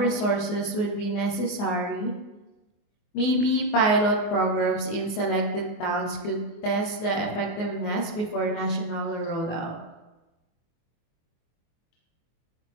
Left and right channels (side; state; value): right; late; 24 ms